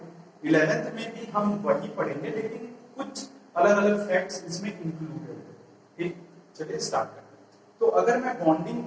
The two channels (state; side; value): identical; both; correlation 1.00